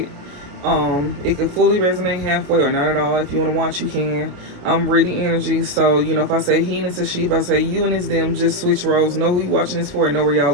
It can fully resonate halfway or not at all. If you want to watch, you can. I'm reading energy, so if I say he and it's a she, if I say you and it's them, just switch roles. Know who you watching this for and know where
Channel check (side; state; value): left; late; 28 ms